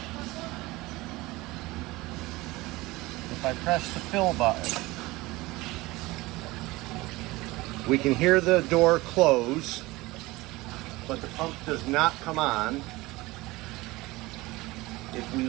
If I press the fill button, we can hear the door close, but the pump does not come on. If we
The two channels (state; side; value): quieter; left; 20.6 dB